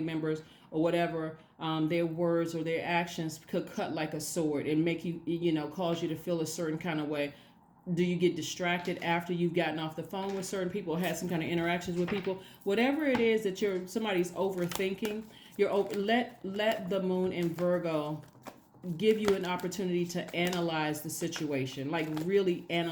or whatever. Their words or their actions could cut like a sword and make you, cause you to feel a certain kind of way. Do you get distracted after you've gotten off the phone with certain people or had some kind of interactions with people? Whatever it is that somebody's overthinking, let the moon in Virgo give you an opportunity to analyze the situation, like really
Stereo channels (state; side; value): identical; both; correlation 1.00